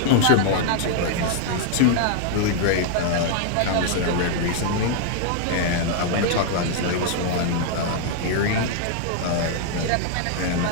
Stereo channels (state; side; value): different; both; correlation 0.00